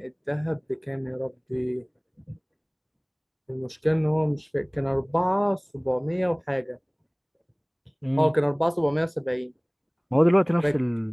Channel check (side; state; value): both; identical; correlation 1.00